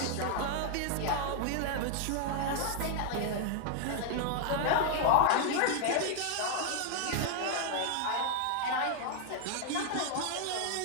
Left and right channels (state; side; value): different; both; correlation 0.00